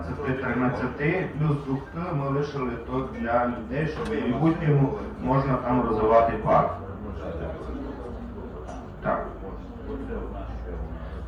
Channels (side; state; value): both; identical; correlation 1.00